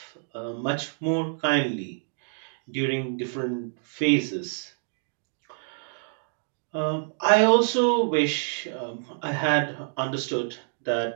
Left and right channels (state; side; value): silent; left; digital silence